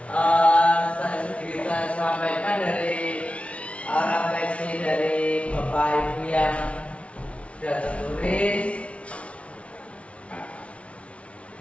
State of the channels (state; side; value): late; right; 0.062 ms